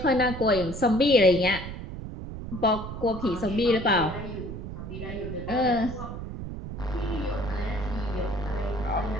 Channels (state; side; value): noise; right; rumble, 8 dB below the sound